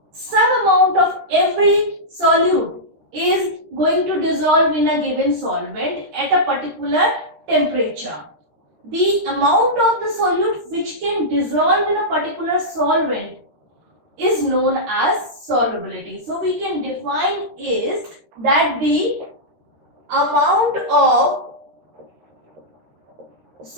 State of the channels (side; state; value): left; late; 13 ms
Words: some amount of every solute is going to dissolve in a given solvent at a particular temperature. The amount of the solute which can dissolve in a particular solvent is known as solubility. So, we can define is that the amount of